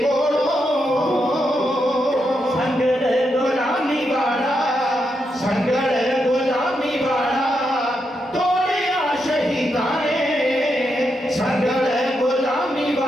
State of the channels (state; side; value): normal; both; correlation 0.83